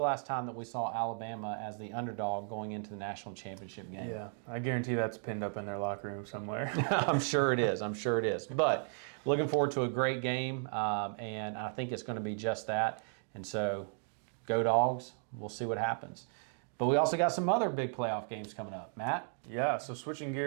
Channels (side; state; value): left; silent; 54 dB below the other